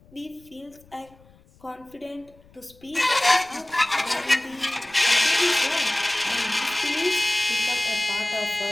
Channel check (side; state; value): left; noise; rumble, 28 dB below the sound